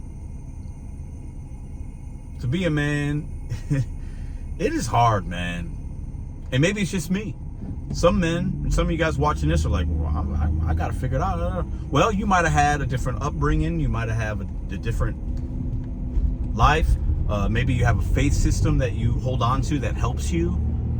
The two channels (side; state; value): both; identical; correlation 1.00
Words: to be a man, it is hard, man. And maybe it's just me. Some men, some of you guys watching this are like, well, I got to figure it out. Well, you might have had a different upbringing. You might have a different life. Maybe you have a faith system that you hold on to that helps you.